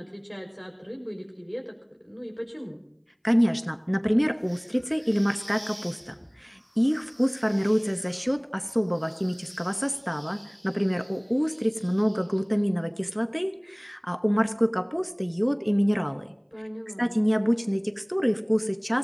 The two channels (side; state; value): both; identical; correlation 1.00